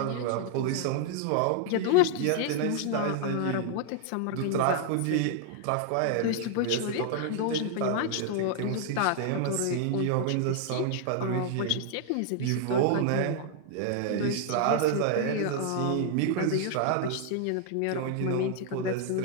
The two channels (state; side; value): different; both; correlation 0.00